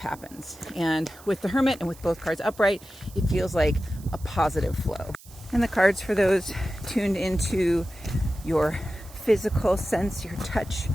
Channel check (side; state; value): right; noise; hiss, 22 dB below the sound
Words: And with the Hermit and with both cards upright, it feels like a positive flow. And the cards for those tuned into your physical sense, your touch